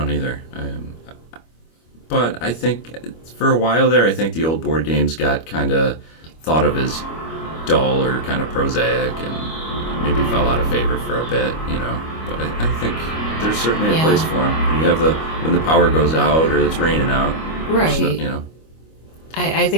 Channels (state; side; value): late; right; 25 ms